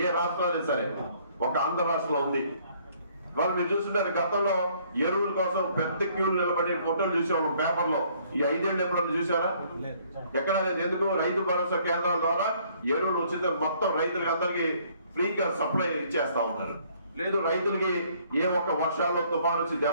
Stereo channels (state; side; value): inverted; both; correlation -0.62